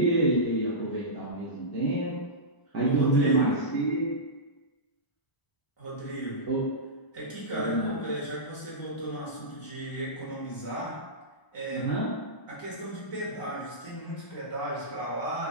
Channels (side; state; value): right; late; 1.0 ms